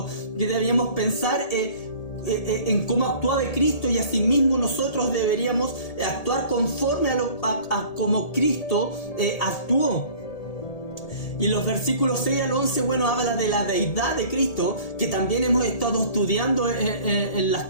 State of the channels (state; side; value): late; right; 1.8 ms